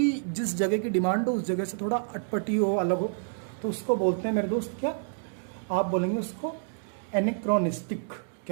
जिस जगह की डिमांड हो उस जगह से थोड़ा अटपटी हो, अलग हो, तो उसको बोलते हैं मेरे दोस्त क्या? आप बोलेंगे उसको एनेक्रोनिस्टिक।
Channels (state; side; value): silent; left; digital silence